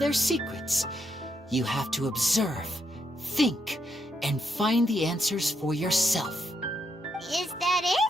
secrets. You have to observe, think, and find the answers for yourself. Is that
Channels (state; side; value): normal; both; correlation 0.79